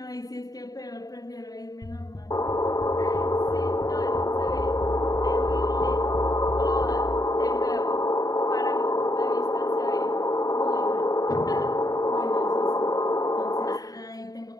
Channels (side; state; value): right; late; 0.18 ms